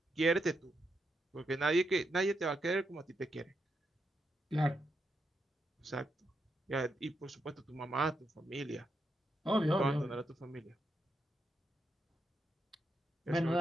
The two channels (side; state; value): both; normal; correlation 0.82